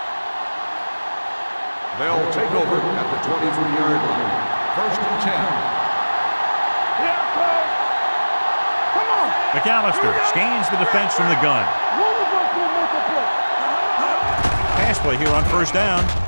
They'll take over at the 23-yard line. First and 10. Here, Cole. Come on. McAllister scans the defense from the gun. One of us will make a play. Pass play here on first down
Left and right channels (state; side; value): inverted; both; correlation -1.00